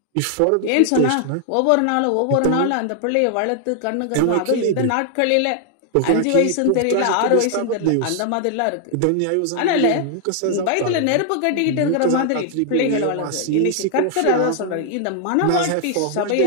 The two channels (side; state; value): both; different; correlation 0.00